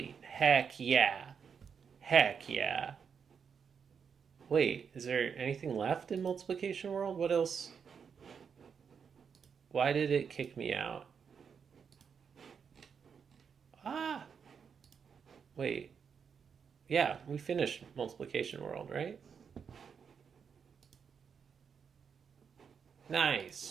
Heck yeah. Heck yeah. Wait, is there anything left in multiplication world? What else? Why did it kick me out? Ah. Wait. Yeah, we finished multiplication world, right?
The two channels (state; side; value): quieter; left; 6.6 dB